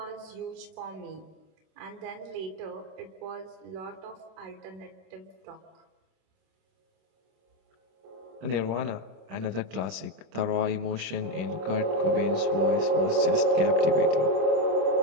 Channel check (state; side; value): late; left; 25 ms